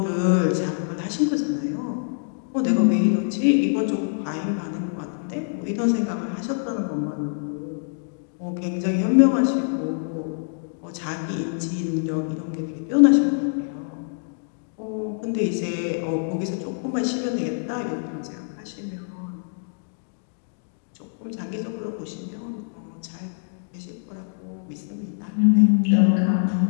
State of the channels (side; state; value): right; silent; digital silence